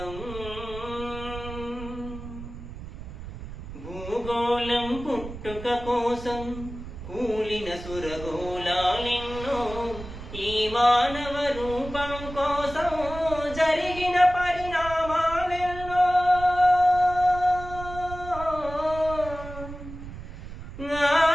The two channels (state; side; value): noise; right; rumble, 11 dB below the sound